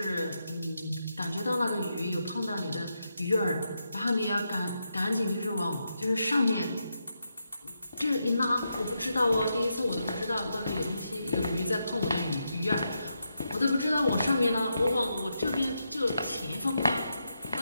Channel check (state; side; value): inverted; both; correlation -0.84